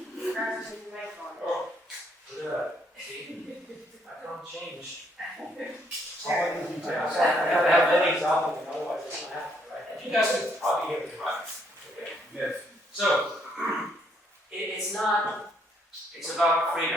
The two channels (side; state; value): both; normal; correlation 0.70